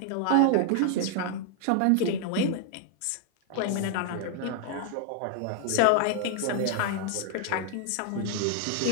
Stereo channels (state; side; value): different; both; correlation 0.00